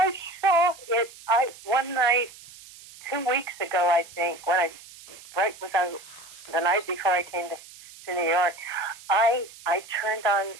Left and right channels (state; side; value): noise; right; hiss, 19 dB below the sound